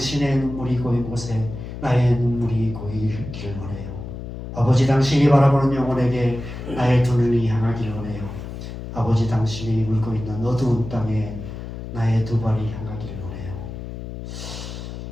눈물이 고인 곳에 나의 눈물이 고이기를 원해요. 아버지 당신이 바라보는 영혼에게 나의 두 눈이 향하기를 원해요. 아버지 당신이 울고 있는 어두운 땅에 나의 두 발이 향하기를 원해요.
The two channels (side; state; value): left; noise; hum, 9 dB below the sound